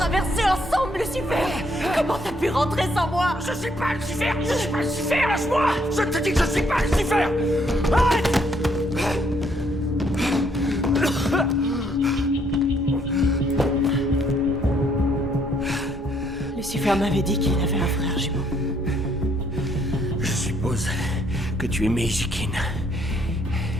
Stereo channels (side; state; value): both; normal; correlation 0.69